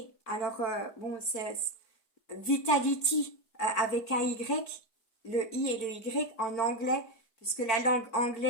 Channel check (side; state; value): right; late; 4.5 ms